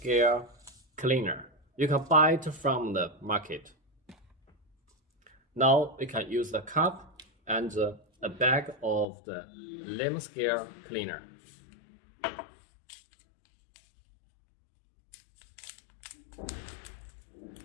cleaner. You can buy it from the market. Now you can use the cup and a bag of the lamp scale cleaner.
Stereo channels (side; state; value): right; drops out; at 9.1 s